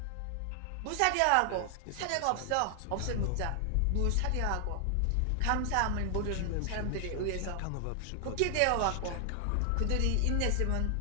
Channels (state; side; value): different; both; correlation 0.00